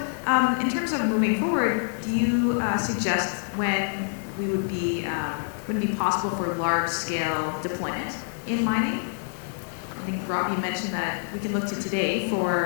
in terms of moving forward, do you suggest when we would be possible for large-scale deployment in mining? I think, Rob, you mentioned that we can look to today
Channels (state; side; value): silent; right; digital silence